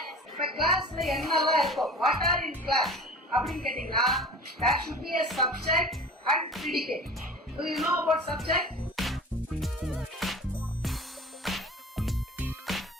இப்ப கிளாஸ்ல என்னெல்லாம் இருக்கும்? வாட் ஆர் இன் கிளாஸ் அப்படின்னு கேட்டீங்கன்னா there should be a subject and predicate. Do you know about subject?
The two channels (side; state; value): both; normal; correlation 0.38